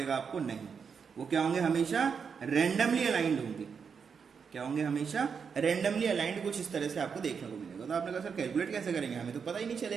आपको, नहीं। वो क्या होंगे, हमेशा रेंडमली अलाइंड होंगे। क्या होंगे, हमेशा रेंडमली अलाइंड, कुछ इस तरह से आपको देखने को मिलेगा। तो आपने कहा सर कैलकुलेट कैसे करेंगे, हमें तो पता ही नहीं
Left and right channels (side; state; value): left; quieter; 6.2 dB